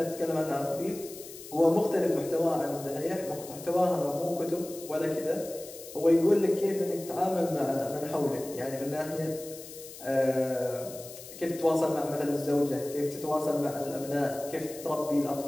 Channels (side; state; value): left; noise; hiss, 15 dB below the sound